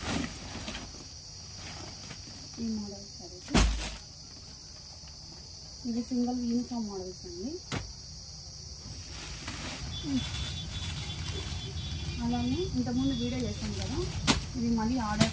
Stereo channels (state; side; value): identical; both; correlation 1.00